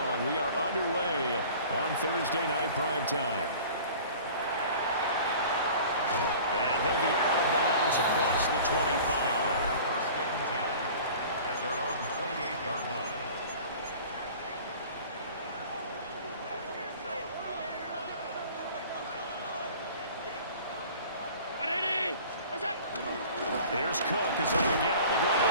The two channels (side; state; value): both; inverted; correlation -0.44